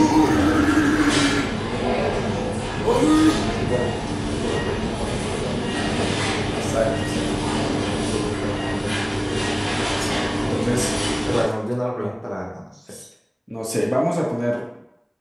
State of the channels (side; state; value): both; identical; correlation 1.00